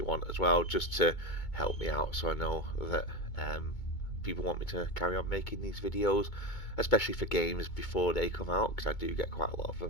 want as well, just to help me out so I know that people want me to carry on making these videos, especially for games before they come out, because I do get quite a lot of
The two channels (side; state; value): right; late; 2.2 ms